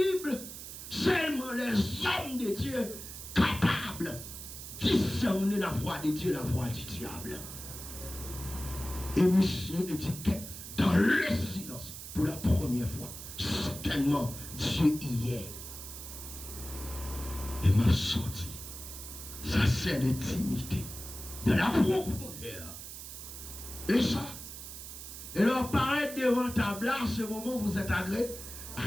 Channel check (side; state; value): right; noise; hiss, 11 dB below the sound